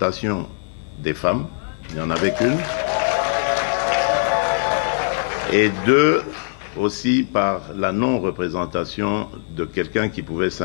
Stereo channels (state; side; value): silent; right; 65 dB below the other